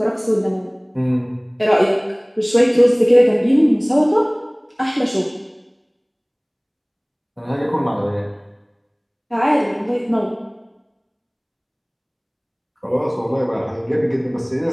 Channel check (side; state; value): both; identical; correlation 1.00